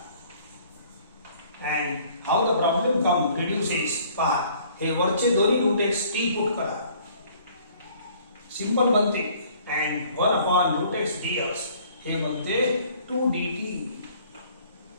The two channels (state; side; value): inverted; both; correlation -0.57